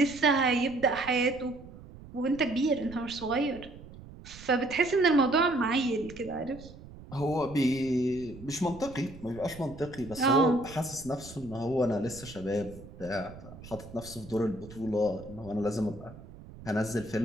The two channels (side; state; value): right; noise; rumble, 17 dB below the sound